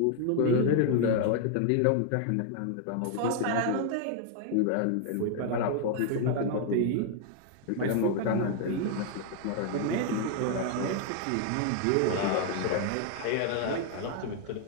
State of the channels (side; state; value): both; different; correlation 0.00